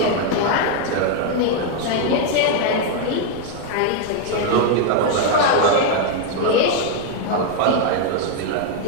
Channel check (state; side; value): different; both; correlation 0.00